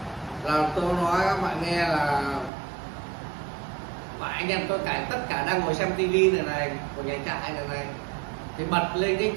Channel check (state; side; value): drops out; left; at 2.5 s